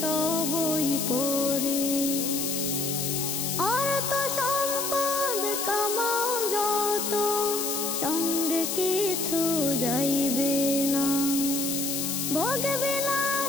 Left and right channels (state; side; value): noise; left; hiss, 1 dB below the sound